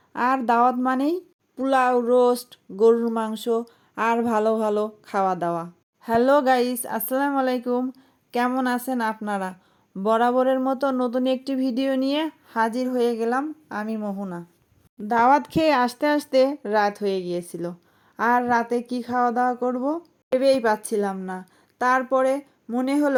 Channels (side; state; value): both; identical; correlation 1.00